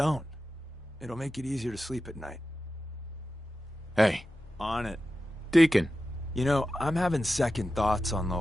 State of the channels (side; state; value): both; normal; correlation 0.93